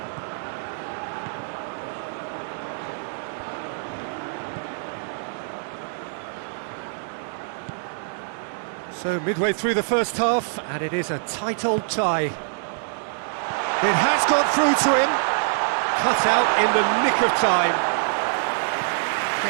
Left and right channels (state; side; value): silent; left; digital silence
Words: So midway through the first half, and it is a tight old tie. It has got through to him. Cut out in the nick of time.